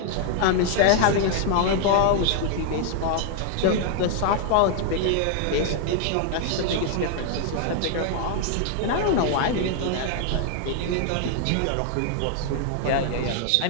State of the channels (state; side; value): different; both; correlation 0.00